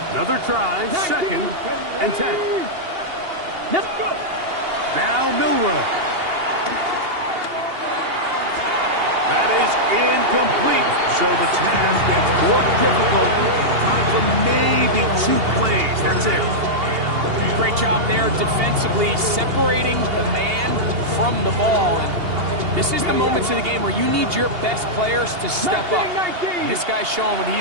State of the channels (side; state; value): left; late; 2.8 ms